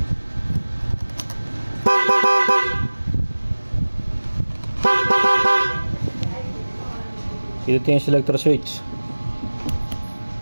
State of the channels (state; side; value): inverted; both; correlation -1.00